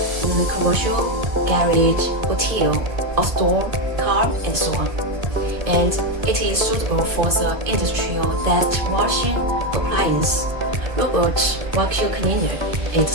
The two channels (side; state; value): left; late; 1.6 ms